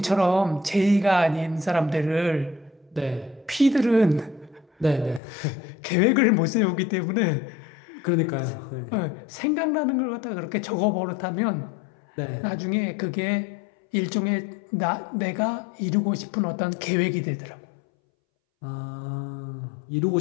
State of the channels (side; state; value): right; drops out; at 5.2 s